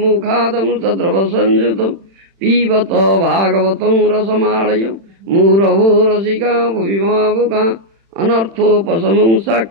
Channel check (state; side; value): late; left; 35 ms